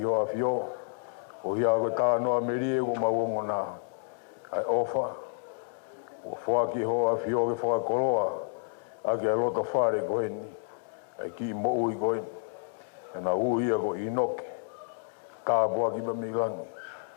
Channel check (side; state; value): right; silent; digital silence